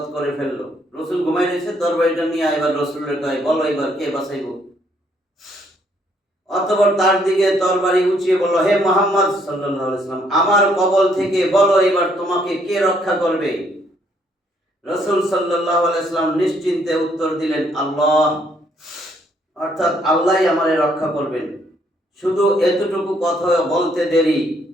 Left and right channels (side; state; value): both; normal; correlation 0.68